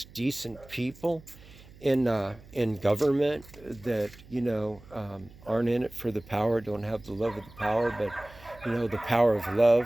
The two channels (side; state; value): right; noise; hum, 22 dB below the sound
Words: decent people in government that aren't in it for the power, don't have the love of the power, but the power of